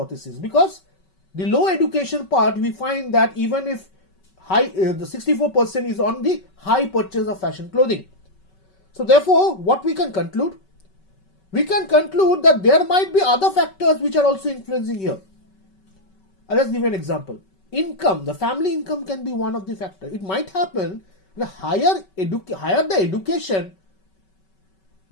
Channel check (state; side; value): late; right; 5.3 ms